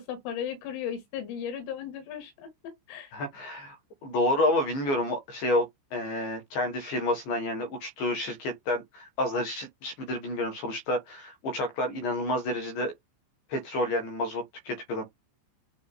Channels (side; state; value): right; late; 15 ms